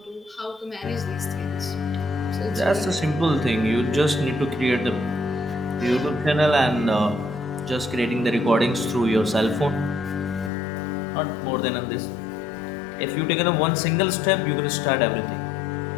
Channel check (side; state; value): right; drops out; at 10.5 s